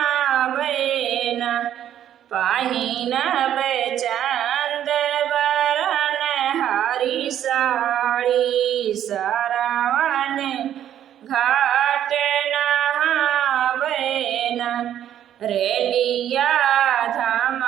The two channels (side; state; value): left; quieter; 10.7 dB